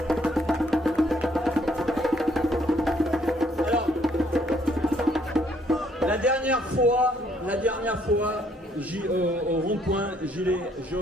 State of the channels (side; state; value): both; normal; correlation 0.66